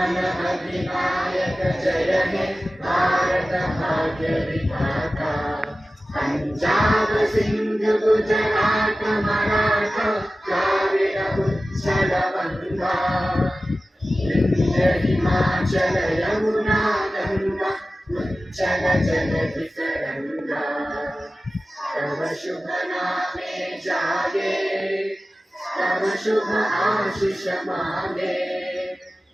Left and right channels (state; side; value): normal; both; correlation 0.96